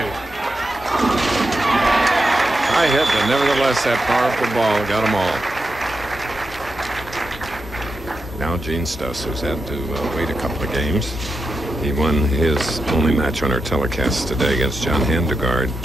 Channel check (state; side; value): normal; both; correlation 0.88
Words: High hit, but nevertheless, that powerful ball got them all. Now Gene Stuss, who's had to wait a couple of games. He won his only match on our telecast today against John Handegard,